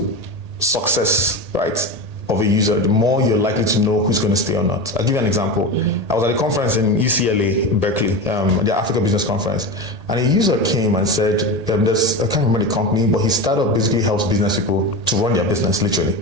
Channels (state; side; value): late; left; 1.8 ms